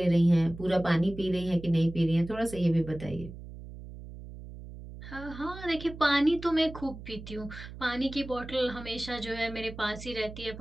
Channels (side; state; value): right; noise; hum, 13 dB below the sound